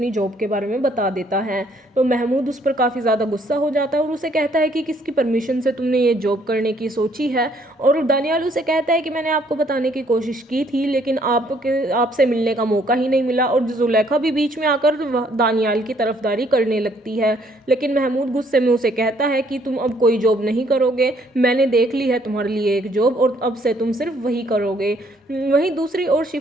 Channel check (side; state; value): both; normal; correlation 0.66